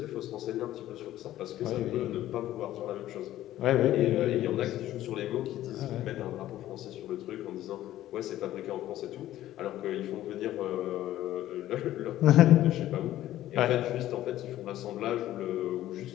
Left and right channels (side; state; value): right; quieter; 13.7 dB